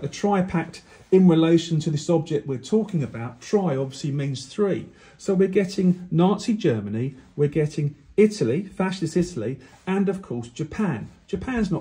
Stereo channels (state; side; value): identical; both; correlation 1.00